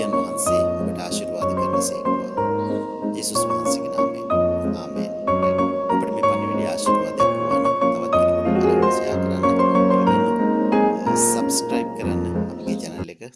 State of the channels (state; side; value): identical; both; correlation 1.00